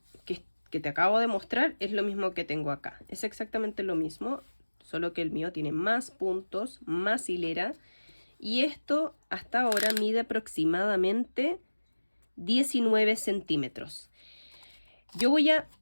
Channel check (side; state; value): both; inverted; correlation -1.00